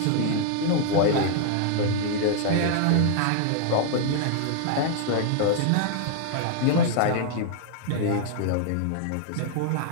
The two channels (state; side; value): different; both; correlation -0.01